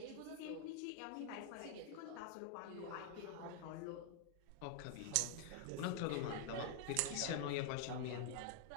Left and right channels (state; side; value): different; both; correlation 0.00